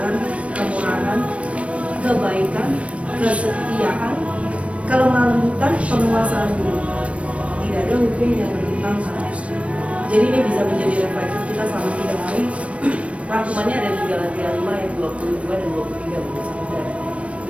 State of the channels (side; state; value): left; late; 0.063 ms